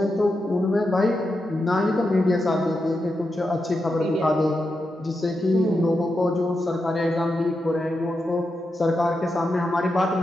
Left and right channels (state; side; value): normal; both; correlation 0.87